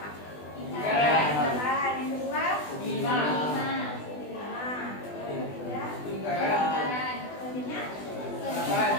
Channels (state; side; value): late; right; 20 ms